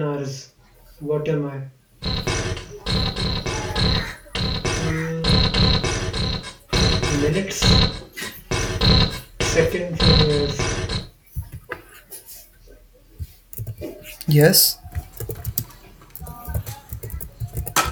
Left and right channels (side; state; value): both; identical; correlation 1.00